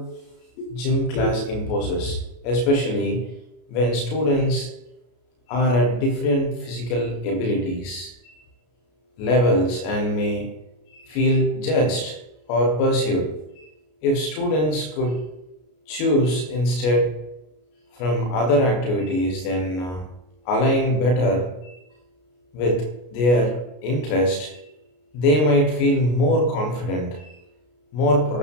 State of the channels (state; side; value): late; right; 33 ms